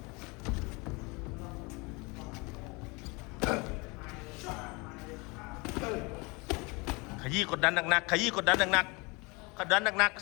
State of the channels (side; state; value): right; quieter; 27.3 dB